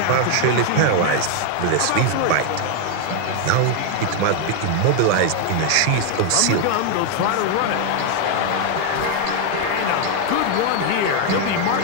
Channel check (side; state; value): both; different; correlation 0.00